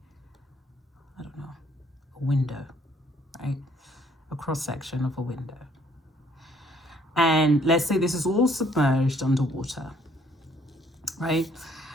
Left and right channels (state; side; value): normal; both; correlation 0.64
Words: window, right? A cross section of a window. And let's say this is all submerged underwater, right?